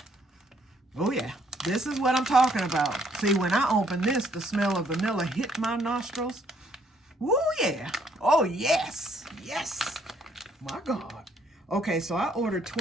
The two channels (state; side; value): normal; both; correlation 0.67